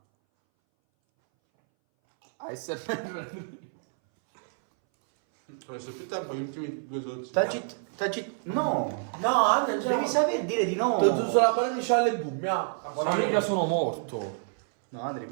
ASMR. Ho messo più tempo gli ultimi 2 Taci. No. No, Andrea, Devi sapere dire di no. Tu sulla banana c'ha le boom, ya. Famiglia sono morto. No, Andri,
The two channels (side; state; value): left; silent; 59 dB below the other